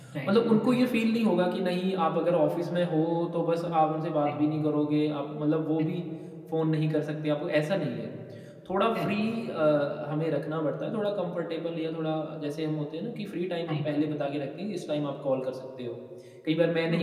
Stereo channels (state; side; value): identical; both; correlation 1.00